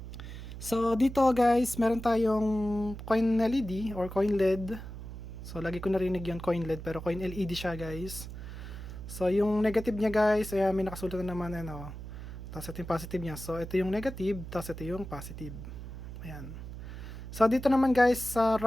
So, dito guys, meron tayong coin LED or coin LED. So, lagi ko narinig yung coin LED pero coin LED siya guys. So, yung negative niya guys, ayan, may nakasulat na naman ano. Tapos ito yung positive niya. So, ito yung negative, tapos ito yung positive. Ayan. So, dito naman guys, sa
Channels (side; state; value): right; noise; hum, 10 dB below the sound